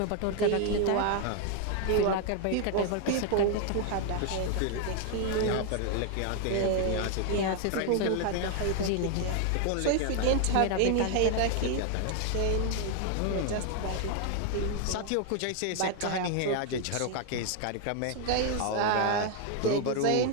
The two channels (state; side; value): different; both; correlation 0.00